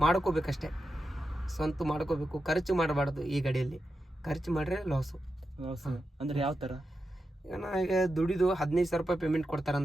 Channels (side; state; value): both; normal; correlation 0.89